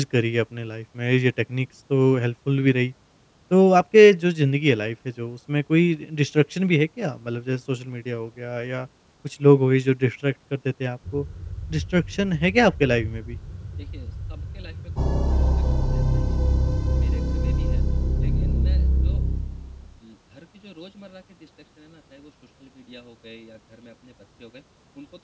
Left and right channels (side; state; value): both; identical; correlation 1.00